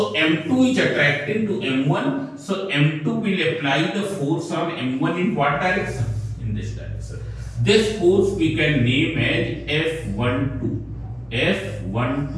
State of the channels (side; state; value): both; identical; correlation 1.00